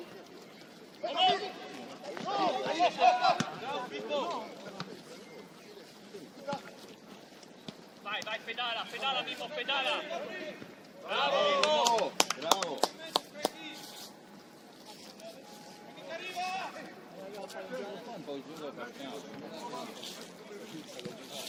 Vai, vai, pedala, pedala, Mimmo, pedala! Bravo, Mimmo! Bravo! Un po' giù da partiamo.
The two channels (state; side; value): identical; both; correlation 1.00